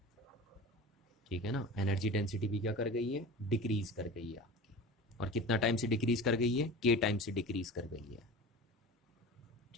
ठीक है ना, एनर्जी डेंसिटी भी क्या कर गई है, डिक्रीज कर गई है आपकी। और कितना टाइम से डिक्रीज कर गई है, के टाइम से डिक्रीज कर गई है।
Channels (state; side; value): normal; both; correlation 0.34